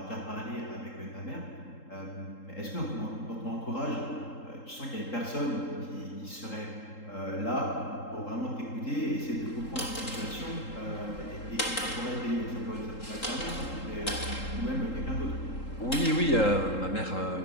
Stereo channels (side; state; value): right; late; 3.8 ms